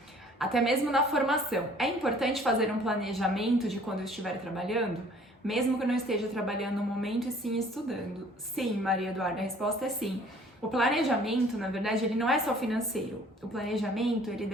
Até mesmo na formação, é importante fazer um planejamento de quando eu estiver trabalhando? Mesmo que eu não esteja trabalhando no momento e sim estudando? Sim, Maria Eduarda, a resposta é sim. O planejamento, na verdade, ele não é só financeiro. O planejamento, ele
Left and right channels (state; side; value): normal; both; correlation 0.54